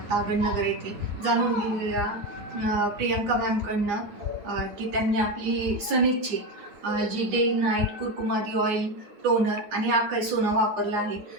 तागडनगर येथे. जाणून घेऊया प्रियंका मॅमकडनं की त्यांनी आपली सनेजची जी डे नाईट कुरकुमादी ऑइल, टोनर आणि आकाई सोना वापरला आहे.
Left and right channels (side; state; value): left; late; 9.5 ms